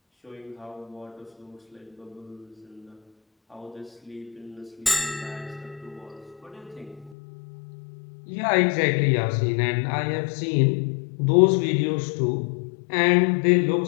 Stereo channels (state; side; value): drops out; right; at 7.2 s